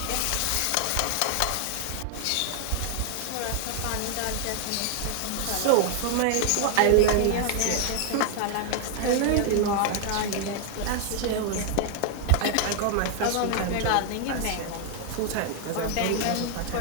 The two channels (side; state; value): both; different; correlation 0.00